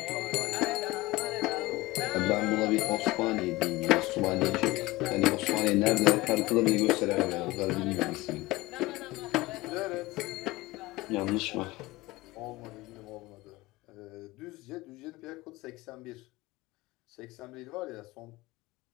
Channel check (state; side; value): quieter; right; 19.9 dB